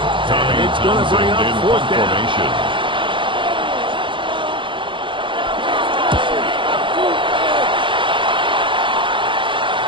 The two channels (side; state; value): left; late; 0.24 ms